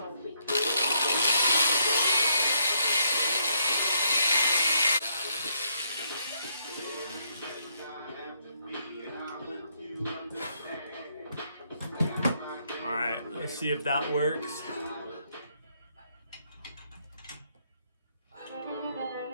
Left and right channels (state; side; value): inverted; both; correlation -0.72